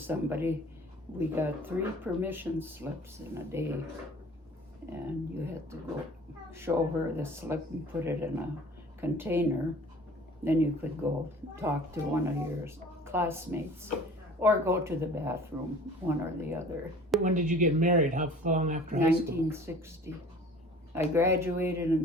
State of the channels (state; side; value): normal; both; correlation 0.47